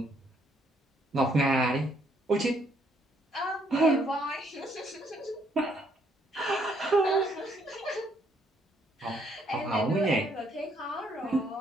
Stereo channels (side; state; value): both; normal; correlation 0.69